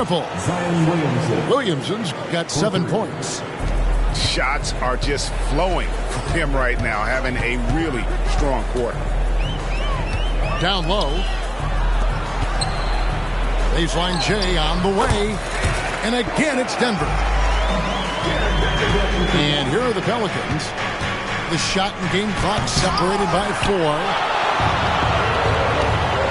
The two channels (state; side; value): identical; both; correlation 1.00